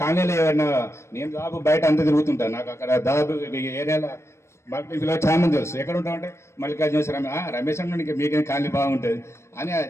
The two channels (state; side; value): late; right; 0.13 ms